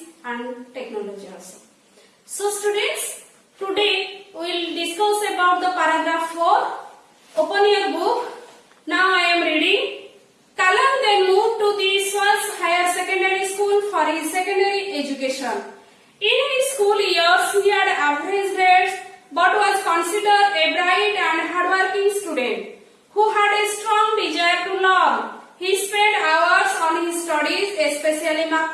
and technology also. So students, today we will discuss about the paragraph 4. Open your book. Now I am reading. Kalam then moved to the Swaz Higher Secondary School for his secondary education. In his school years, he had average grades but was considered a bright and hardworking student who had a strong desire to learn. He spent hours on his studies, especially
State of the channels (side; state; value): both; identical; correlation 1.00